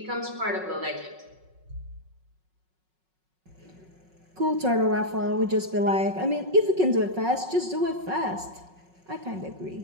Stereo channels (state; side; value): late; left; 5.4 ms